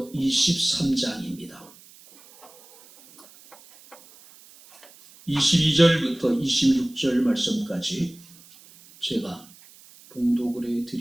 23장입니다. 22절부터 26절 말씀까지 제가 봉독을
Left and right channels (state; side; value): noise; right; hiss, 24 dB below the sound